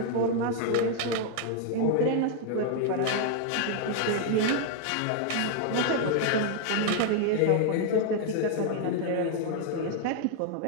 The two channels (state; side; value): different; both; correlation 0.00